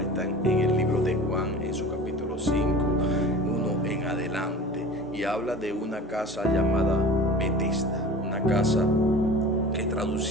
está en el libro de Juan, en su capítulo 5, 1 en adelante, y habla de una casa llamada Betesda, una casa que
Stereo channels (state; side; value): normal; both; correlation 0.39